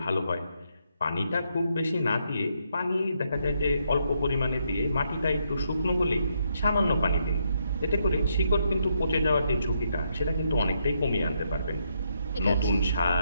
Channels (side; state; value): both; inverted; correlation -0.77